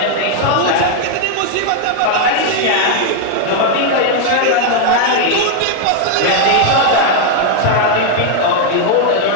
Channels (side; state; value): both; different; correlation 0.00